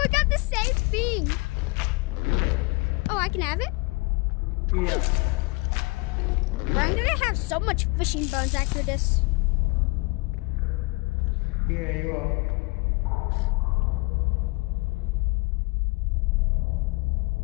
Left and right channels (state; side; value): quieter; right; 26.2 dB